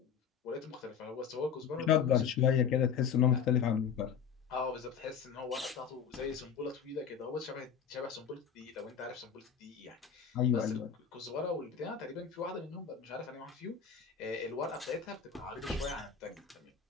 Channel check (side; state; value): right; quieter; 7.1 dB